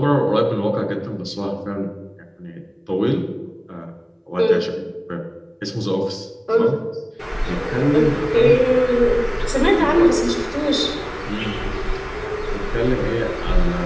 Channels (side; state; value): both; identical; correlation 1.00